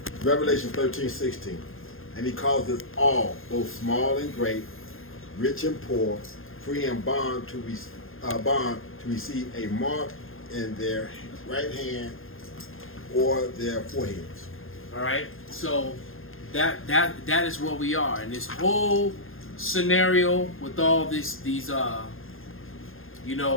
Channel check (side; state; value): right; late; 0.60 ms